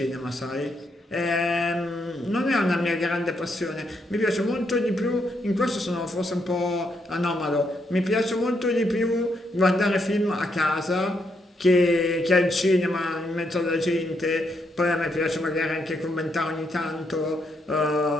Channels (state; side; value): normal; both; correlation 0.78